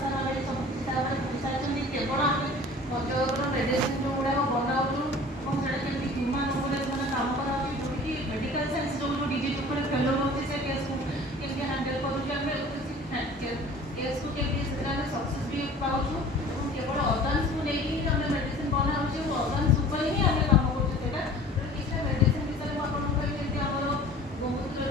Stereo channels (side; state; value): both; normal; correlation 0.45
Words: ସାର୍ ଅଲରେଡ଼ି ସବୁ କିଛି ତାପରେ କହିସାରିଛନ୍ତି। କେବଳ ଆମେ ପଞ୍ଚଲୋକର ମେଡ଼ିସିନ ଯେଉଁଗୁଡ଼ାକ ବନାଉଛୁ ଏବଂ ସେଇଟା କେମିତି ହ୍ୟୁମାନ୍ ଉପରେ ସେମାନେ କାମ କରାଉଛି, ଯେଉଁଠିକି ମେଡ଼ିକାଲ ସାଇନ୍ସ ଯେଉଁ ଡିଜିଜ୍ ଉପରେ ଫେଲୋ ରହୁଛି ସେ କେସ୍କୁ କେମିତି ହ୍ୟାଣ୍ଡେଲ୍ କରୁଛୁ, ଆମେ କେସ୍କୁ କେମିତି ସେଥିରେ ଆମେ ସକ୍ସେସ୍ ବି ପାଉଛୁ। ଏବଂ କେବଳ ଅର୍ଗାନ୍ସକୁ ନେଇକି ଆମେ ମେଡ଼ିସିନ ବନାଉଛୁ ଏବଂ ଅର୍ଗାନ୍ସ ଉପରେ ହିଁ ଆମେ କାମ କରୁଛୁ। ସେଇଟା କିଛିଟା ମେଡ଼ିସିନ ବିଷୟରେ ମୁଁ ଆପଣଙ୍କୁ କହିବି। ଯେମିତି ଆମର